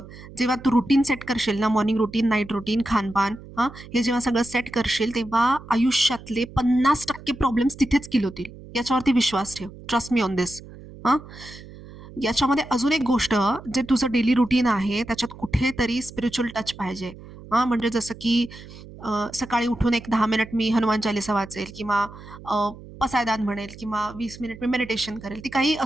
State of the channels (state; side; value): noise; right; hum, 17 dB below the sound